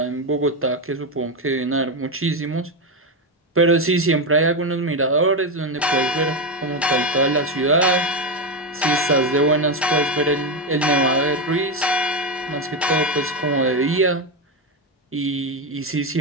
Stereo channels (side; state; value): both; normal; correlation 0.10